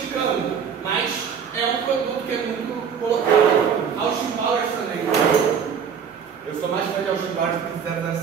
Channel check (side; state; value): left; quieter; 7.1 dB